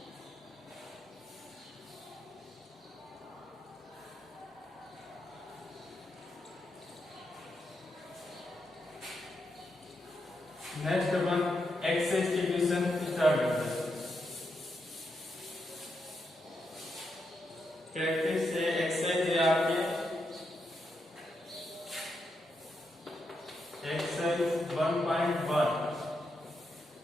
नेक्स्ट अपन एक्सेस डिवीजन स्टार्ट करते हैं। प्रैक्टिस से एक्सेस है आपके एक्सरसाइज 1.1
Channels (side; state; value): both; normal; correlation 0.83